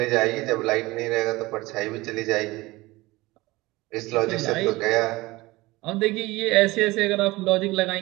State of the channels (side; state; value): left; quieter; 20.8 dB